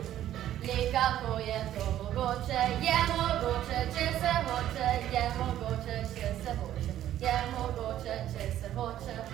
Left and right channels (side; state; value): left; quieter; 12.2 dB